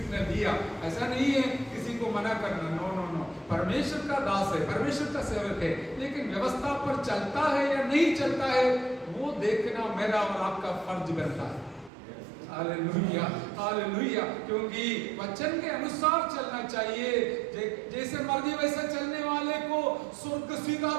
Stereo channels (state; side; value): drops out; left; at 11.9 s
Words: दिया। ऐसा नहीं है किसी को मना करना, नो नो नो, परमेश्वर का दास है, परमेश्वर का सेवक है, लेकिन व्यवस्था पर चलता है या नहीं चलता है वो देखना मेरा और आपका फर्ज बनता है। हालेलुया। हालेलुया। क्योंकि वचन के अनुसार चलना चाहिए। जैसे मर्जी वैसे चलने वाले को स्वर्ग